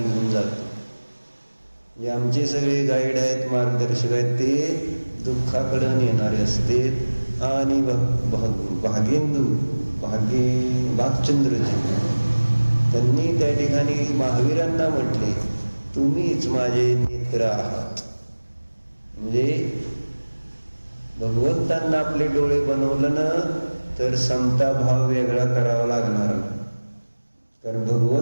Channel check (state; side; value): inverted; both; correlation -1.00